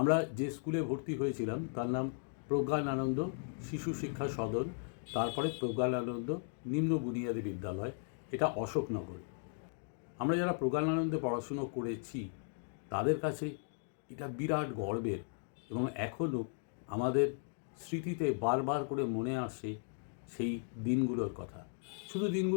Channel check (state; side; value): silent; right; 53 dB below the other